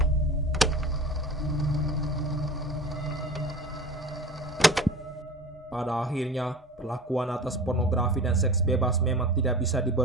Pada akhirnya, perlakuan atas pornografi dan seks bebas memang tidak bisa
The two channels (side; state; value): both; normal; correlation 0.37